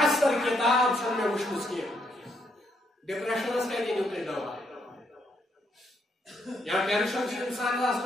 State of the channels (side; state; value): both; normal; correlation 0.75